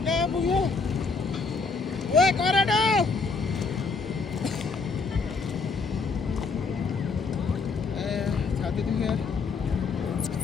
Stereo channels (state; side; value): quieter; right; 4.5 dB